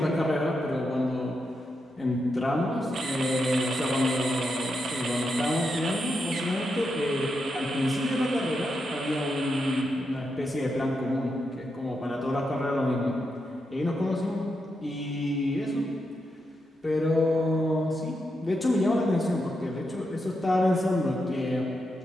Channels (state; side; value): normal; both; correlation 0.85